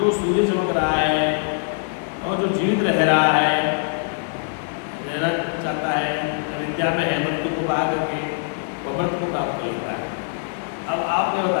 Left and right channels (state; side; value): silent; right; 56 dB below the other